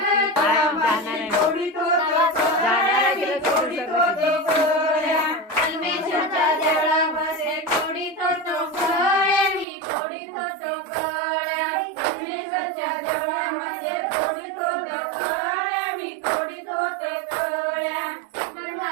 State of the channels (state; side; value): drops out; left; at 9.7 s